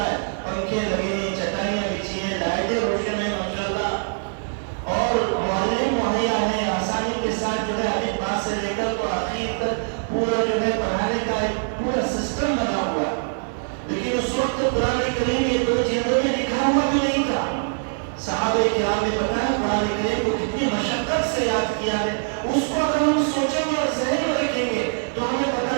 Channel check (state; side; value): silent; left; digital silence